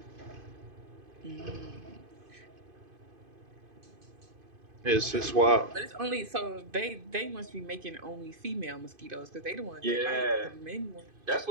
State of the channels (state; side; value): late; left; 2.5 ms